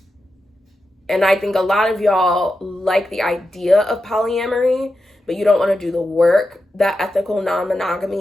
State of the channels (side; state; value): both; normal; correlation 0.89